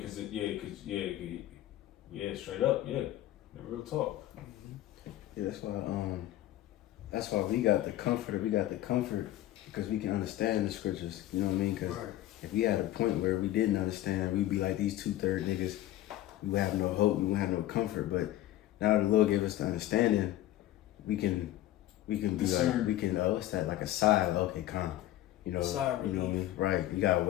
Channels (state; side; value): quieter; right; 14.2 dB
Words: Yeah, straight up, yeah, the real talk. Yeah, that's why we got the comfort. We got the comfort because we can understand the scriptures. You know what I mean? Because if we had a point where we didn't understand, we'd be like these 2/3 niggas. We would have no hope. We would have no comfort. But now the Lord gave us the understanding. We can be discern. like, we can, what's that, like a sigh, okay, calm. You know, you know what I mean? Right. You gotta